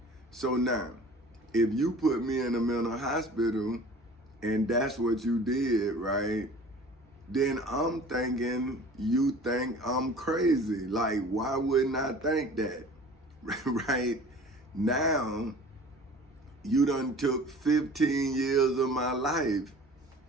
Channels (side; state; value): both; normal; correlation 0.45